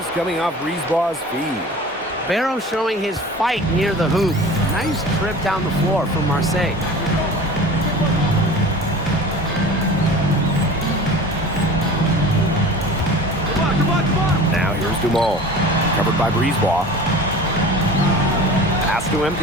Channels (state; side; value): normal; both; correlation 0.39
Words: coming off Brisebois' feed. Barrow showing his fight near the hoop. Nice trip down the floor from Marseille. Now here's Dumal, covered by Brisebois. Pass to